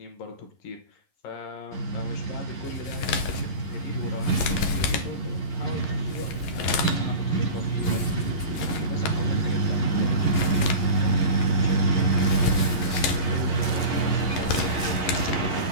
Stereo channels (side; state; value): right; late; 11 ms